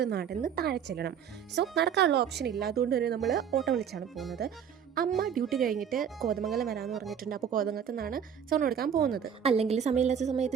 നടന്ന് താഴെ ചെല്ലണം. സോ നടക്കാനുള്ള ഓപ്ഷൻ ഇല്ല. അതുകൊണ്ട് തന്നെ നമ്മൾ ഓട്ടോ വിളിച്ചാണ് പോകുന്നത്. അമ്മ ഡ്യൂട്ടി കഴിഞ്ഞിട്ട് കോതമംഗലം വരാമെന്ന് പറഞ്ഞിട്ടുണ്ട്. അപ്പോൾ കോതമംഗലത്ത് നിന്നാണ് സ്വർണ്ണം എടുക്കാൻ പോകുന്നത്. അല്ലെങ്കിൽ സമയമില്ലാത്ത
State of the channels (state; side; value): quieter; left; 8.1 dB